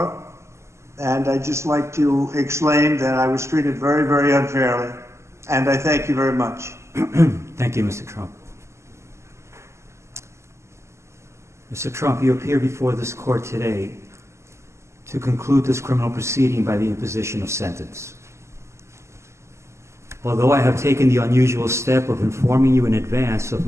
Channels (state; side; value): late; left; 0.13 ms